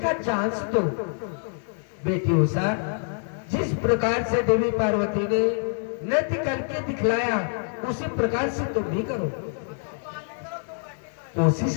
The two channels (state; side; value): silent; right; 61 dB below the other